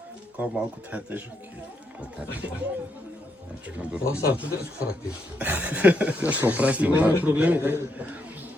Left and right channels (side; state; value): both; normal; correlation 0.78